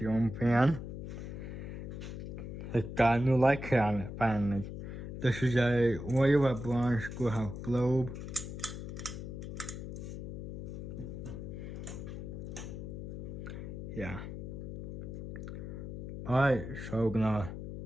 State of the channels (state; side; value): noise; left; hum, 7 dB below the sound